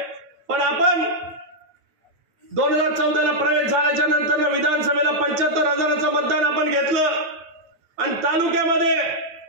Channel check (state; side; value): late; left; 9.3 ms